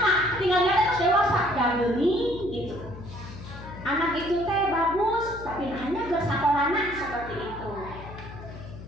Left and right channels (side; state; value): left; noise; hum, 13 dB below the sound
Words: tinggal lihat terus dewasa, gini gitu. Anak itu teh bagus, tapi hanya bersakolana seperti itu.